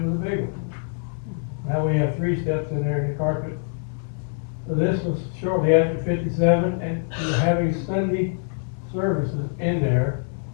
a big one. Now we have 3 steps in there in the carpet. So this was shortly after 57, and we're having Sunday services in there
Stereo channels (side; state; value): right; silent; digital silence